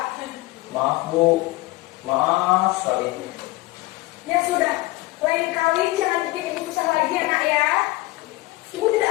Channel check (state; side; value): quieter; right; 20.3 dB